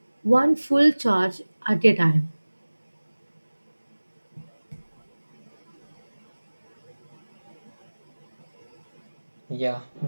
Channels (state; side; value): inverted; both; correlation -1.00